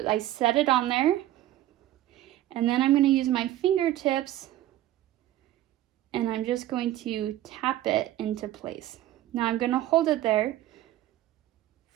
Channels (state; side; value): quieter; left; 13.9 dB